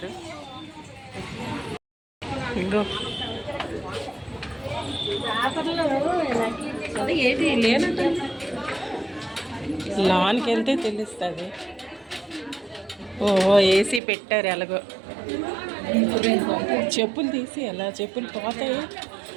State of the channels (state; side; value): drops out; left; at 14.0 s